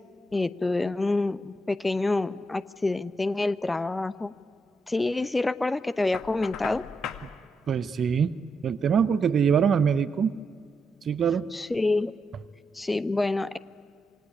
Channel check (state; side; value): normal; both; correlation 0.83